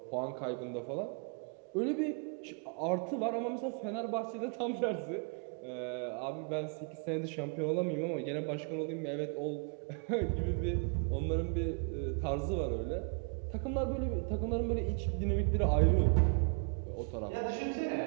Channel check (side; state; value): left; quieter; 39.2 dB